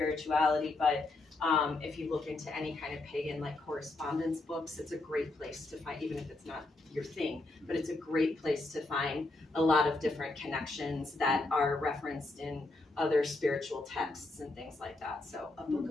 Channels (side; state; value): right; quieter; 3.1 dB